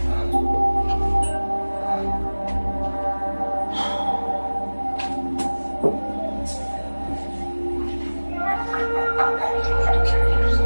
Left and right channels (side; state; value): both; inverted; correlation -1.00